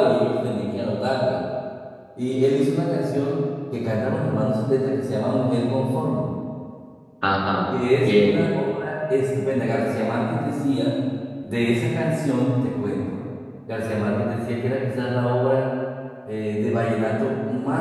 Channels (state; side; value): identical; both; correlation 1.00